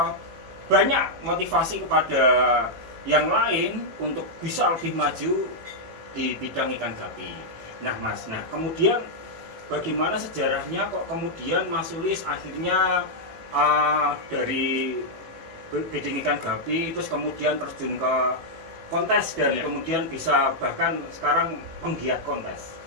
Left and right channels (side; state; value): left; late; 18 ms